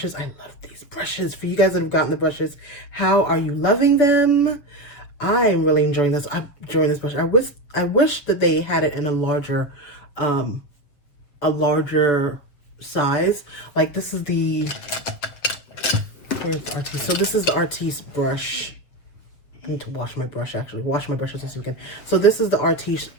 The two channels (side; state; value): right; late; 7.3 ms